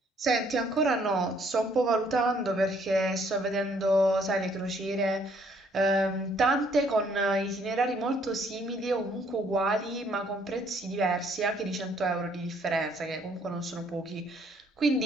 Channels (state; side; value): normal; both; correlation 0.65